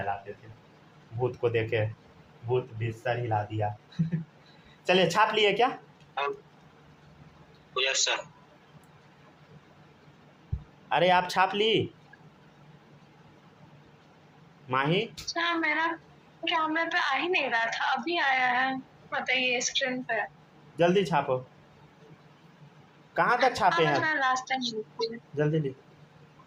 थे। भूत को देखे भूत भी सर हिला दिया। चलिए छाप लिए क्या? Yes sir. अरे आप छाप ली माही? अच्छा, मेरा कैमरे पे आ ही नहीं रहा था, अभी आया है। बताइए स्क्रीन पे। जल्दी छापो। कहाँ तक छापे हैं? लास्ट टाइम जल्दी लिख।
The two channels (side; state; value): both; identical; correlation 1.00